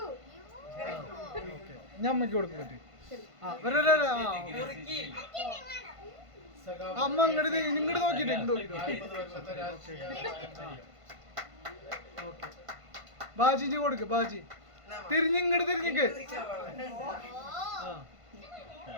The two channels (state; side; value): late; left; 1.5 ms